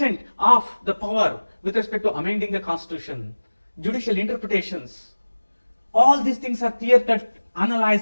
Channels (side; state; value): both; inverted; correlation -1.00